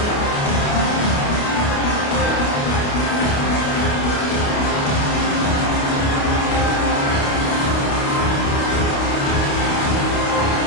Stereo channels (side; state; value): right; late; 29 ms